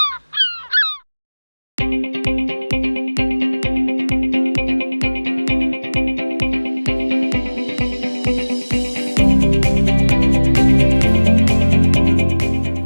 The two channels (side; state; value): both; inverted; correlation -1.00